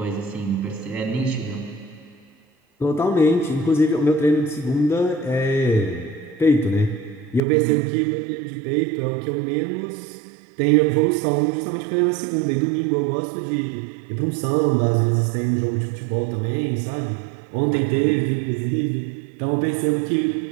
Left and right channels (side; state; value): left; drops out; at 7.4 s